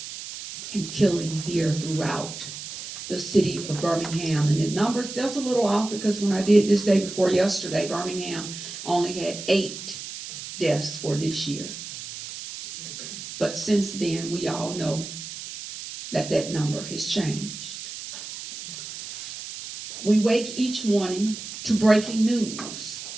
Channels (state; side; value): noise; right; hiss, 10 dB below the sound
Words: and killing here throughout the city of Birmingham. And the number's just a little off because when I did this day before yesterday, Birmingham only had 8 deaths for this year. But since then, we all know that that number has changed. We wake each morning to breaking news.